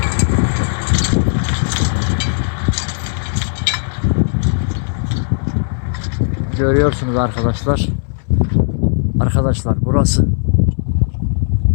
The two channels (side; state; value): right; silent; digital silence